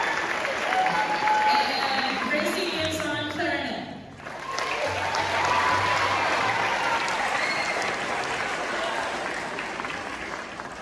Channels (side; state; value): both; identical; correlation 1.00